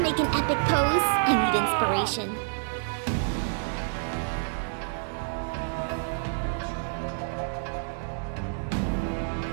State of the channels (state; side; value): silent; left; digital silence